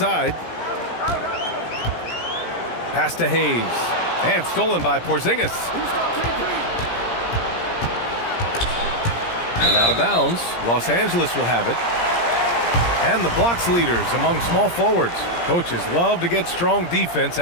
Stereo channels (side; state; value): right; late; 17 ms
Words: Pass to Hayes. And stolen by Porzingis. And out of bounds. Los Angeles will have it. And the blocks leaders among small forwards. Coaches love to get strong defense